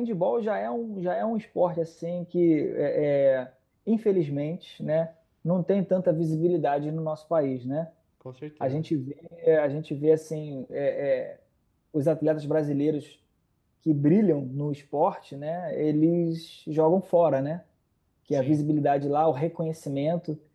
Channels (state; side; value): identical; both; correlation 1.00